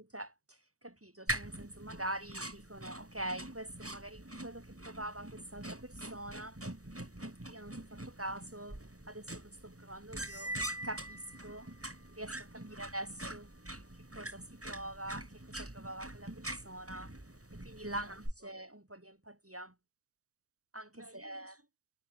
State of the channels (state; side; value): late; left; 0.66 ms